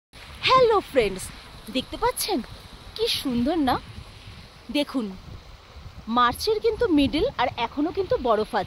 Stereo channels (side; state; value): both; identical; correlation 1.00